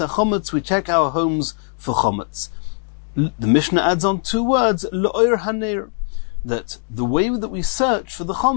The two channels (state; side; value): silent; right; 62 dB below the other